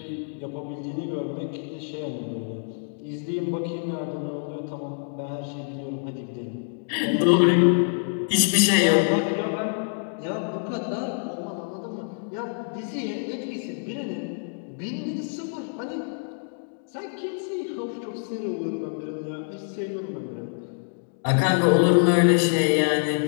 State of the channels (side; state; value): right; silent; digital silence